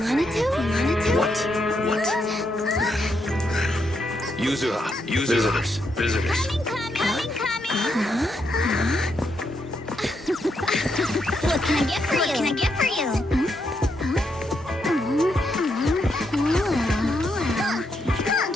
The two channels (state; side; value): normal; both; correlation 0.79